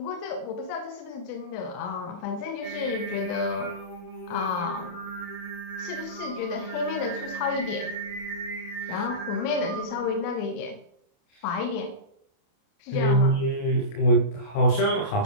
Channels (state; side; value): late; right; 28 ms